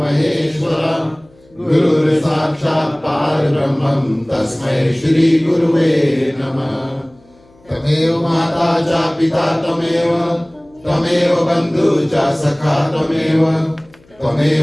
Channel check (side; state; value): left; noise; hum, 30 dB below the sound